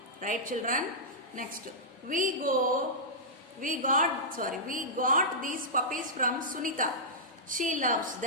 Right, children? Next, we got these puppies from Sunita. She loves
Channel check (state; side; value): normal; both; correlation -0.13